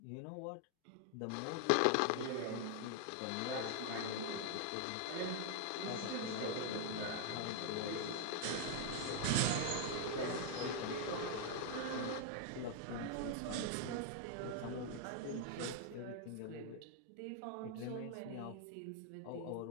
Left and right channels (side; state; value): both; different; correlation 0.00